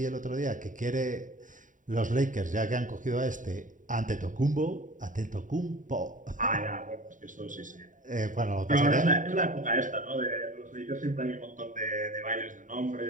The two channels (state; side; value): late; left; 0.38 ms